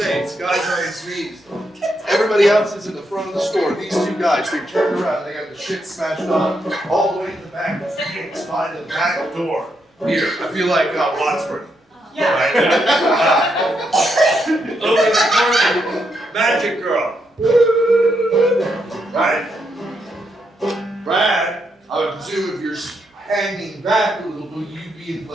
guy's on his knees. Everybody else is in the front of the store. These 2 guys, they turned around, they got the shit smashed on, all the way to the back of the gates by the back door. Here, I feel like Wadsworth. Yeah. Right? Over in the corner, Magic Girl. Right? Brad, I would presume if you're hanging back a little bit, you'd be in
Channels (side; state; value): both; normal; correlation 0.80